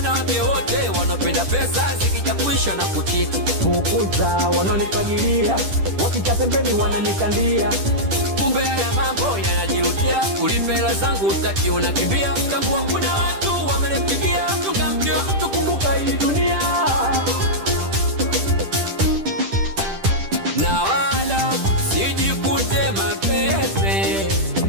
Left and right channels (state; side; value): late; left; 10 ms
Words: wote wanapenda pesa zikija kuisha na kuchiti. Fukuza wanonifagilia, wakija pembeni wananikandia. Kumbe haya mambo yanajirudia, ulipe hela zangu utaki unakimbia. Tambua kuna watu wamenipigia, tungamkia tukumbuka hii dunia. Na wala sijikute mapepe